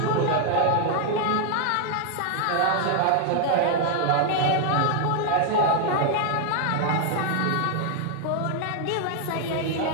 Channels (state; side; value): different; both; correlation 0.00